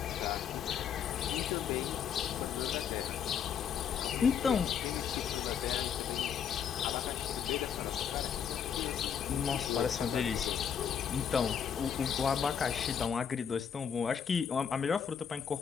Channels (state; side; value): quieter; right; 7.7 dB